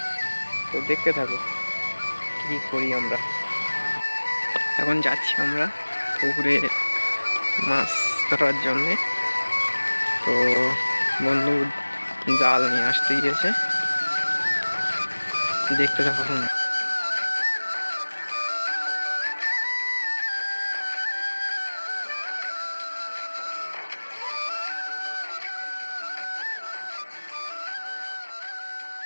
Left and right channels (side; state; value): both; inverted; correlation -1.00